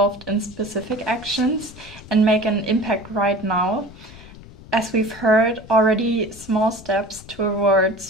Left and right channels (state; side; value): noise; left; rumble, 19 dB below the sound